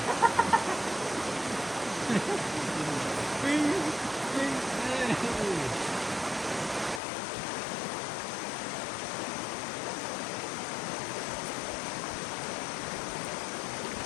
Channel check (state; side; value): drops out; right; at 7.0 s